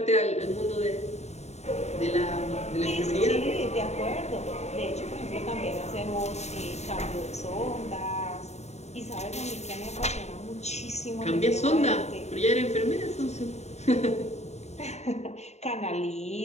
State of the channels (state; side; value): late; right; 0.32 ms